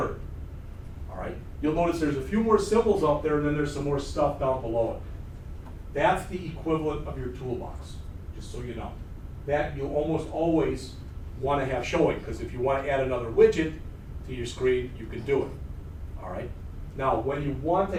all right, you'll notice there's a few more symbols up there, and then there's some more stuff down below it. That's the equivalent of your toolbox, just so you know. That you'll almost always want to have showing, because if you want to add another widget to your screen, you can do it, all right? Now, when you want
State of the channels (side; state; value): both; identical; correlation 1.00